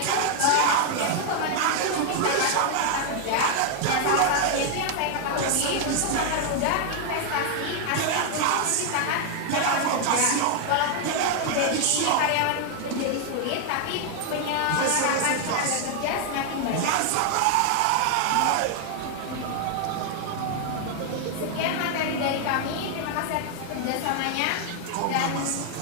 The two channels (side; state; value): both; different; correlation 0.00